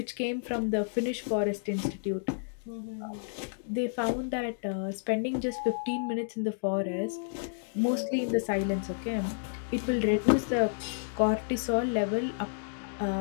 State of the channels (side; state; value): right; silent; digital silence